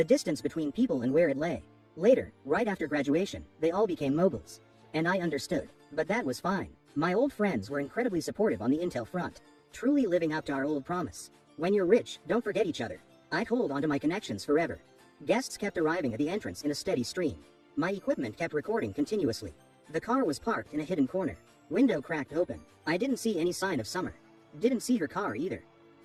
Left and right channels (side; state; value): both; identical; correlation 1.00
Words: distance between people and where it lay. Later, right after graduation, they all became moguls. And I understood, but that was fine. My old friends were incredibly supportive on the intel front, truly living up to our old promise. When you're rich, don't forget each other. I'd hold onto my connections forever. Guests kept arriving at the entrance in a steady stream. My equipment kept recording continuously. The car was parked in a hidden corner. Window cracked open. I didn't see any sign of Summer. Didn't see her car either.